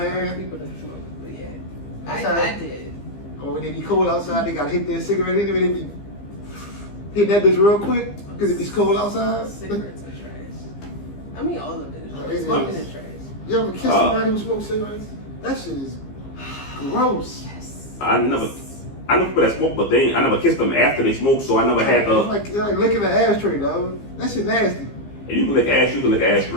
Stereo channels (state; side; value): late; right; 15 ms